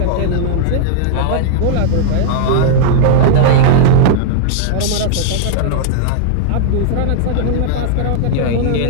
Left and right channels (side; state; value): both; different; correlation -0.01